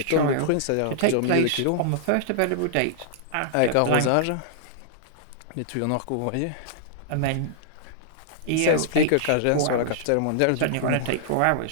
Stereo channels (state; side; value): different; both; correlation -0.01